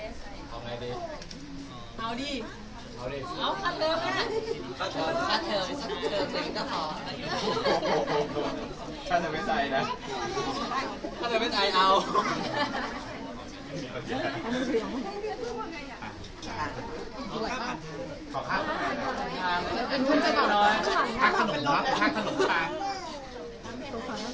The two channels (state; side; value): identical; both; correlation 1.00